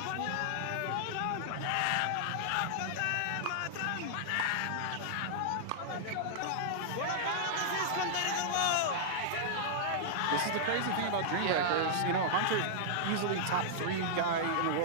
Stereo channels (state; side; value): different; both; correlation -0.01